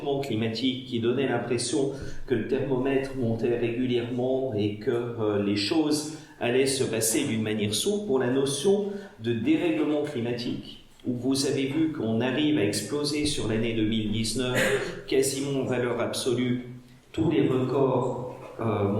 climatique qui donnait l'impression que le thermomètre montait régulièrement et que les choses allaient se passer d'une manière sourde, pour la notion de dérèglement climatique, où vous avez vu qu'on arrive à exploser sur l'année 2019 quasiment en valeur absolue tous les records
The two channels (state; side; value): identical; both; correlation 1.00